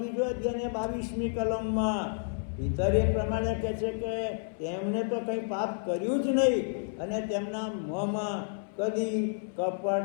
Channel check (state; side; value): silent; right; 58 dB below the other